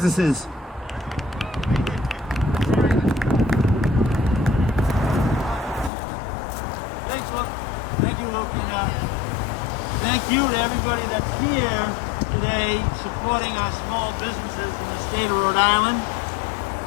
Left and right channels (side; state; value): right; drops out; at 5.9 s